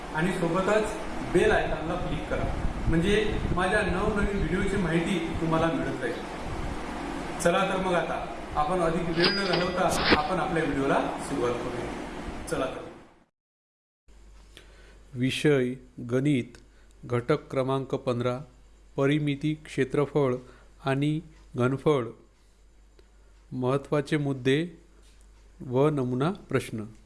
आणि सोबतच बेल आयकॉनला क्लिक करा, म्हणजे माझ्या नवनवीन व्हिडिओची माहिती तुम्हाला मिळत जाईल। चला तर मग आता आपण अधिक वेळ न घालवता आपण आपल्या व्हिडिओला सुरुवात करूया। चला तर। विषय गणित, घटक क्रमांक 15, परिमिती, क्षेत्रफळ आणि घनफळ, महत्त्वाचे मुद्दे व नमुना प्रश्न।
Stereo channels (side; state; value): both; identical; correlation 1.00